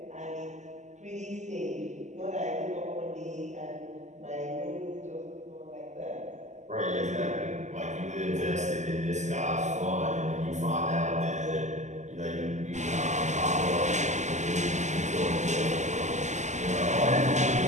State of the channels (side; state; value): left; late; 0.34 ms